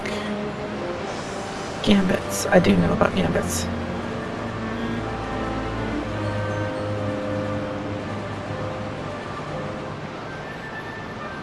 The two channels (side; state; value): both; identical; correlation 1.00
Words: gambits. I do know about gambits.